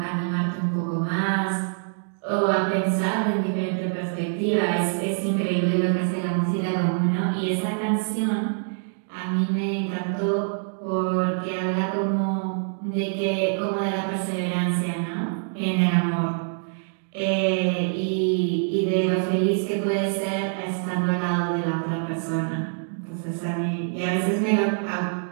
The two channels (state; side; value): silent; left; digital silence